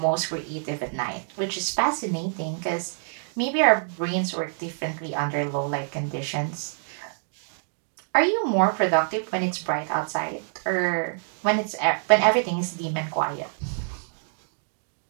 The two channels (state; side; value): silent; left; digital silence